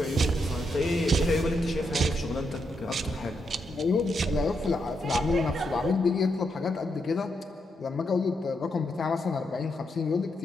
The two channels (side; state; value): both; normal; correlation 0.81